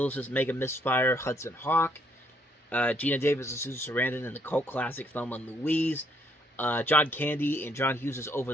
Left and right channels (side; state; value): both; normal; correlation 0.69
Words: Mega Misfire Hudson Hawk, Gina Davis and Susan Sarandon in the cult classic Thelma and Louise, John Candy and John Hughes'